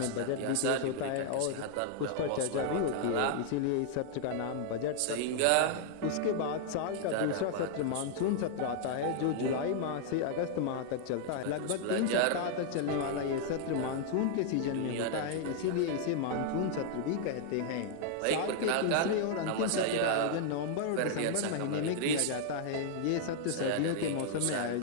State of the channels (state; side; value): different; both; correlation 0.00